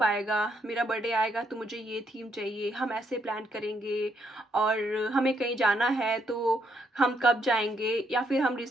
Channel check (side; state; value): both; normal; correlation 0.75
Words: आएगा? मेरा बर्थडे आएगा तो मुझे ये थीम चाहिए, हम ऐसे प्लान करेंगे और हमें कहीं जाना है तो हम कब जाएँगे? या फिर हम